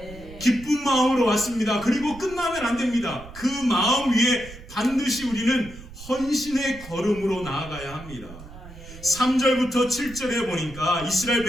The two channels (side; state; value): right; noise; rumble, 16 dB below the sound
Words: 기쁜 마음으로 왔습니다. 그리고 끝나면 안 됩니다. 그 마음 위에 반드시 우리는 헌신의 걸음으로 나아가야 합니다. 3절부터 7절에 보니까 이스라엘